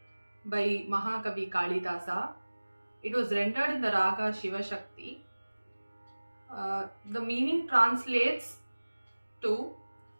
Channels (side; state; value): both; inverted; correlation -1.00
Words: by Mahakavi Kalidasa. It was rendered in the raga Shiva Shakti. The meaning translates to